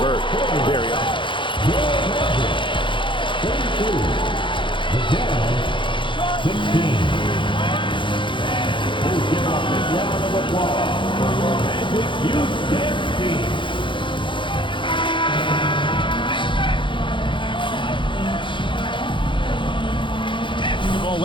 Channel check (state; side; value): late; right; 0.24 ms